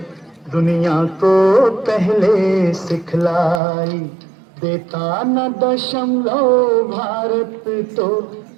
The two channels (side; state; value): left; drops out; at 3.6 s